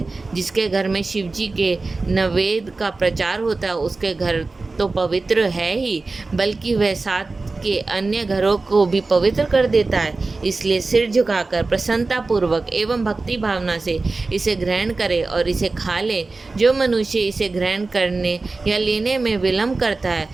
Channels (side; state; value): left; quieter; 3.6 dB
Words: जिसके घर में शिव जी के नवेद का प्रचार होता है, उसके घर तो पवित्र है ही, बल्कि वह साथ के अन्य घरों को भी पवित्र कर देता है। इसलिए सिर झुकाकर प्रसन्नता पूर्वक एवं भक्ति भावना से इसे ग्रहण करे और इसे खा ले। जो मनुष्य इसे ग्रहण करने या लेने में विलंब करता है